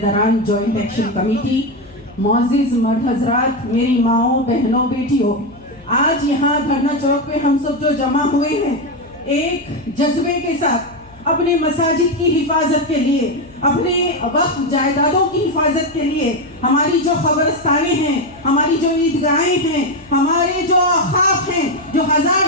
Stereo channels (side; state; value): left; noise; hum, 26 dB below the sound